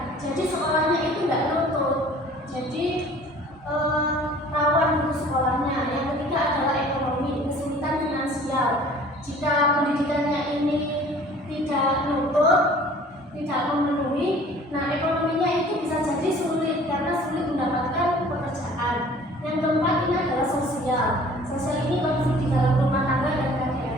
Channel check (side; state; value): both; normal; correlation 0.49